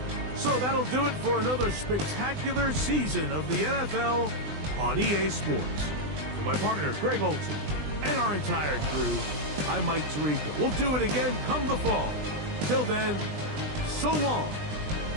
So that'll do it for another spectacular season of the NFL on EA Sports. For my partner, Greg Olson, and our entire crew, I'm Mike Tirico. We'll do it again come the fall. Till then, so long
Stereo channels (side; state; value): left; late; 20 ms